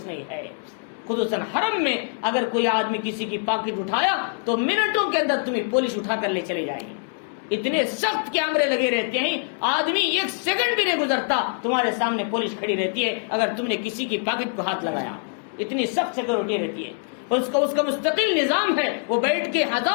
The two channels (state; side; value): silent; right; 62 dB below the other